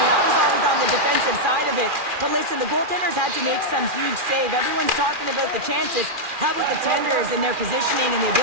I was always on the defensive side of it. But listen, the goaltenders had to make some huge save. Everyone's talking about the chances. How about the tenders and their positioning and the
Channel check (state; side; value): late; left; 2.4 ms